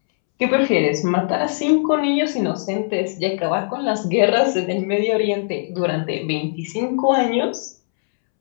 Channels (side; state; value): right; silent; 66 dB below the other